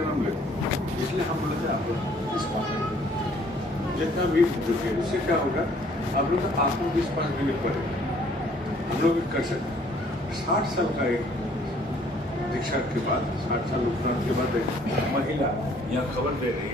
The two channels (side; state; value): both; normal; correlation 0.60